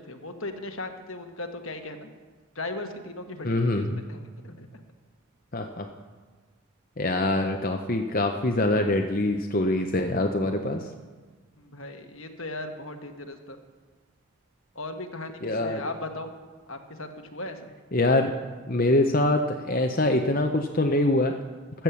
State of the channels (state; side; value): normal; both; correlation 0.31